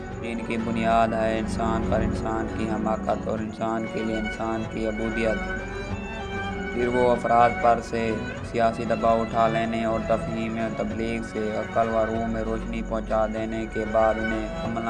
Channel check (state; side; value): identical; both; correlation 1.00